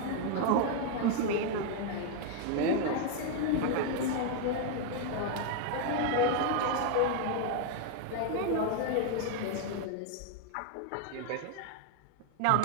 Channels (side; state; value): both; different; correlation 0.00